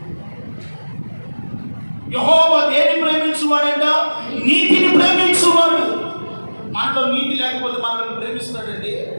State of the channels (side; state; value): both; inverted; correlation -1.00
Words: యెహోవా దేని ప్రేమించువాడంట? నీతిని ప్రేమించువాడు. మనలో నీతి లేకపోతే మనల్ని ప్రేమిస్తాడండి?